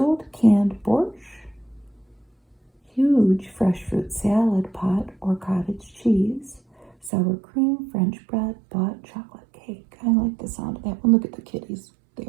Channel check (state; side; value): drops out; left; at 7.1 s